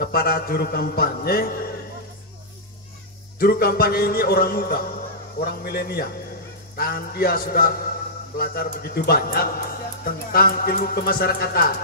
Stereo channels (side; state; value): both; normal; correlation -0.13